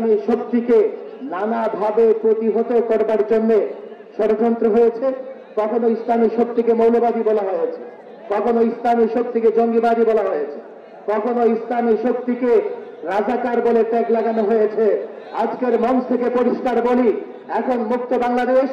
শক্তিকে নানাভাবে প্রতিহত করবার জন্য ষড়যন্ত্র হয়েছে। কখনো ইসলামী শক্তিকে মৌলবাদী বলা হয়েছে, কখনো ইসলামী শক্তিকে জঙ্গিবাদী বলা হয়েছে, কখনো ইসলামী শক্তিকে রাজাকার বলে ট্যাগ লাগানো হয়েছে। আজকের মঞ্চ থেকে পরিষ্কার বলি, এখন মুক্ত বাংলাদেশ,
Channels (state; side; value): identical; both; correlation 1.00